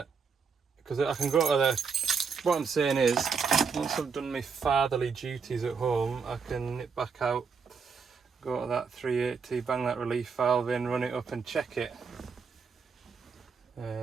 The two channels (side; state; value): left; quieter; 5.6 dB